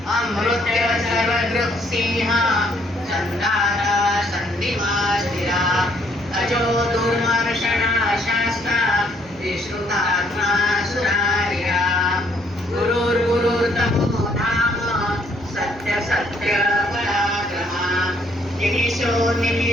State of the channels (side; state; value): right; noise; hum, 28 dB below the sound